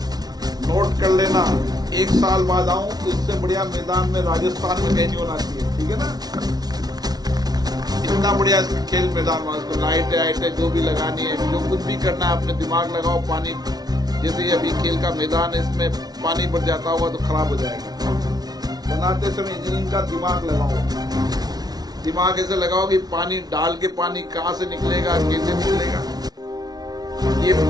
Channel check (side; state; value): left; late; 0.19 ms